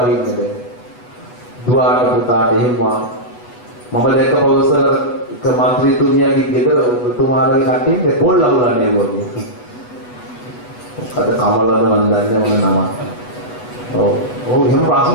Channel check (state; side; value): late; right; 8.3 ms